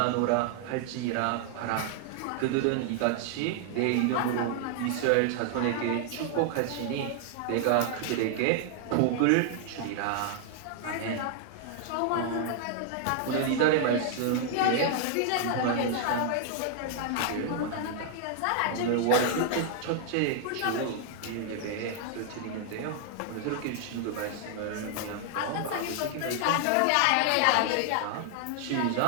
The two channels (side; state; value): both; different; correlation 0.00